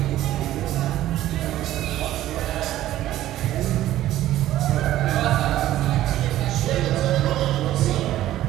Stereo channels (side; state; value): left; quieter; 13.9 dB